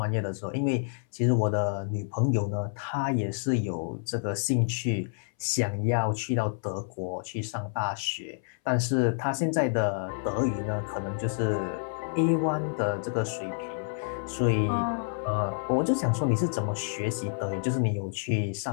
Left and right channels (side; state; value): right; silent; 59 dB below the other